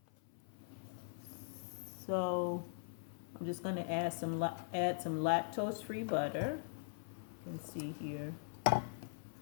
So I'm just going to add some lactose-free butter. You can see here,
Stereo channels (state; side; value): silent; right; 50 dB below the other